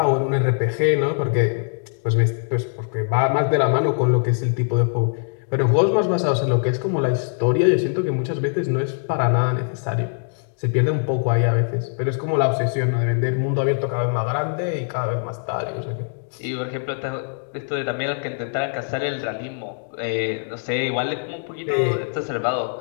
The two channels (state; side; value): silent; right; digital silence